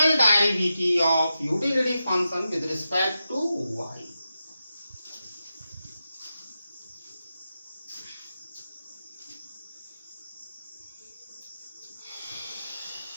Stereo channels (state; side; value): inverted; both; correlation -0.90